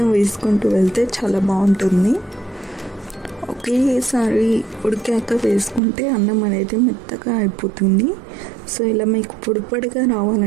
వేసుకుంటూ వెళ్తే చాలా బాగుంటుంది. ఒకేసారి ఉడికాక వేసుకుంటే అన్నం అనేది మెత్తగా అయిపోతుంది. సో ఇలా మీకు పొడిగా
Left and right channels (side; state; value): left; drops out; at 5.8 s